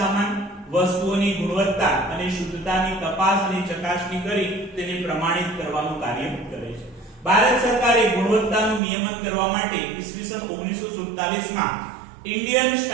વસ્તુઓની ગુણવત્તા અને શુદ્ધતાની તપાસ અને ચકાસણી કરી તેને પ્રમાણિત કરવાનું કાર્ય કરે છે. ભારત સરકારે ગુણવત્તાનું નિયમન કરવા માટે ઈસવીસન 1947 માં ઇન્ડિયન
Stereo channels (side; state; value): left; drops out; at 8.8 s